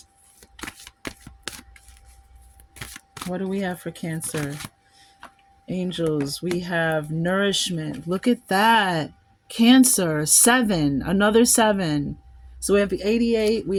what do we have for Cancer? Angels, we have nourishment. Look at that. Cancer, seven, another seven. So we have 88, we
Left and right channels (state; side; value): identical; both; correlation 1.00